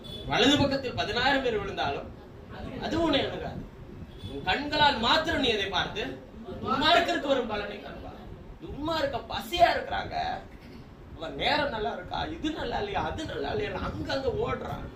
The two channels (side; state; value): both; identical; correlation 1.00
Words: வலது பக்கத்தில் 10,000 பேர் விழுந்தாலும் அது உன்னை அணுகாது. உன் கண்களால் மாத்திரம் நீ அதை பார்த்து துன்மார்க்கருக்கு வரும் பலனை காண்பார். துன்மார்க்க பசியா இருக்கிறாங்க, அவன் நேரம் நல்லா இருக்கா, இது நல்லா இல்லையா, அது நல்லா இல்லையா, அங்கங்க ஓடுறான்.